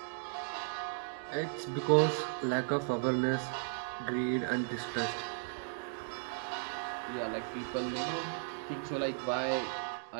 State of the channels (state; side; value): silent; left; digital silence